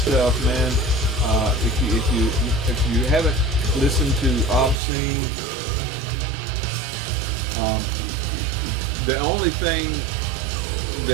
man. If you haven't listened to Obscene, the only thing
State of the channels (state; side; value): drops out; left; at 4.8 s